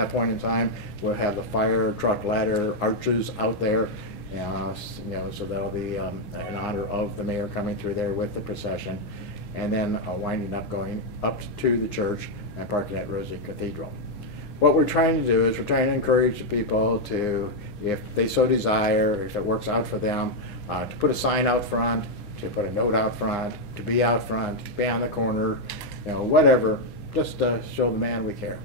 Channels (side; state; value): right; late; 6.2 ms